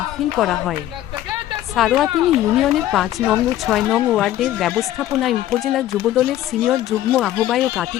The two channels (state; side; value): quieter; right; 13.4 dB